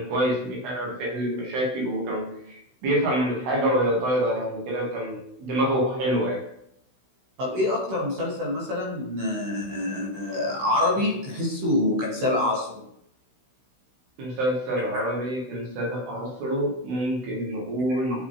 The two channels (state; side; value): late; left; 16 ms